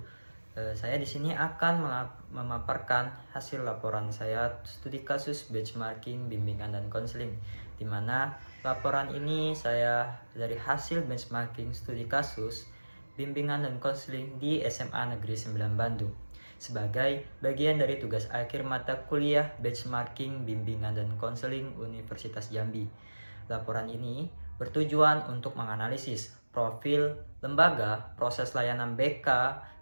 Saya di sini akan memaparkan hasil laporan saya studi kasus benchmarking, bimbingan dan konseling, di mana laporan ini saya dari hasil benchmarking studi kasus bimbingan dan konseling di SMA Negeri 9 Bandung sebagai bagian dari tugas akhir mata kuliah benchmarking, bimbingan dan konseling Universitas Jambi. Laporan ini bertujuan untuk menganalisis profil lembaga, proses layanan BK,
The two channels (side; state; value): both; inverted; correlation -1.00